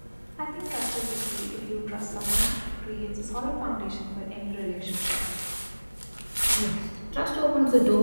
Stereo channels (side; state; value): both; inverted; correlation -1.00